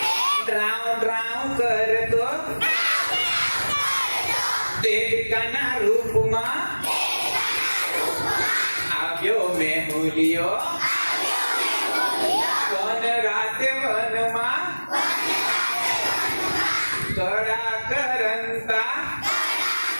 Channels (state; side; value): inverted; both; correlation -1.00